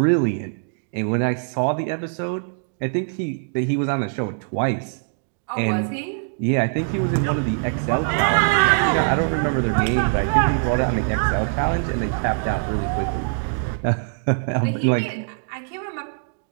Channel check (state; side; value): silent; left; digital silence